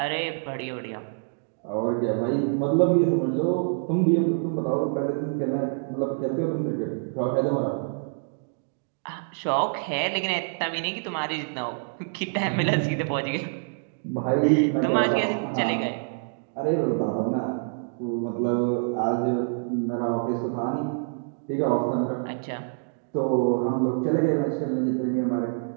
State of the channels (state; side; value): silent; left; digital silence